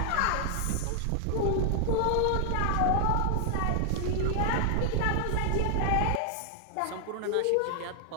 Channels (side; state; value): both; different; correlation 0.00